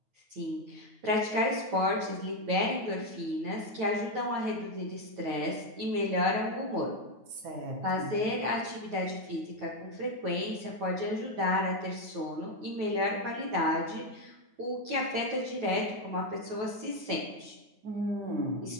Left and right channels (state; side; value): late; left; 9.3 ms